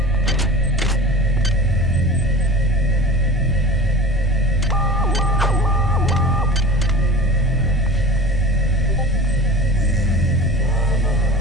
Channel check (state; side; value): normal; both; correlation 0.36